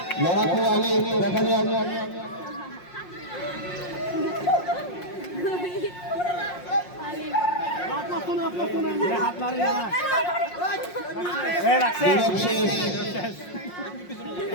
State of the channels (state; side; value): late; right; 5.6 ms